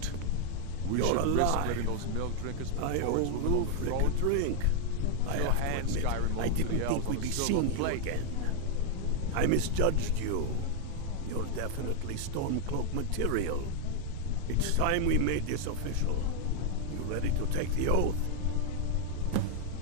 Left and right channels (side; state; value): both; different; correlation 0.00